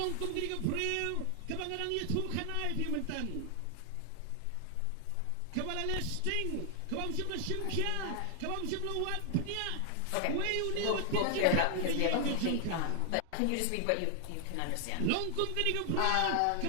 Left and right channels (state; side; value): different; both; correlation 0.00